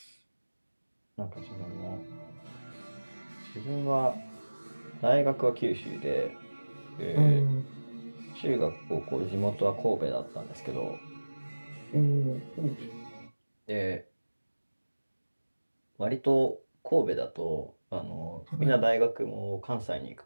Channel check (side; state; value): both; inverted; correlation -1.00